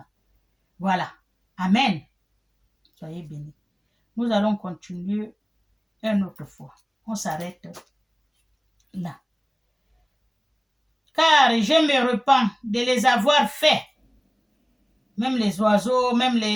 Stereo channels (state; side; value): identical; both; correlation 1.00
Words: Voilà. Amen. Soyez bénis. Nous allons continuer une autre fois. On s'arrête là. Car je me repens de les avoir faits. Même les oiseaux, même